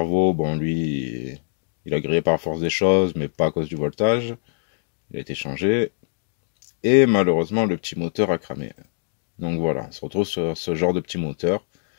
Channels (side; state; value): right; silent; digital silence